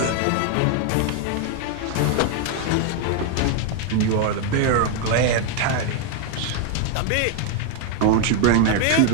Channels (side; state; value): both; different; correlation 0.00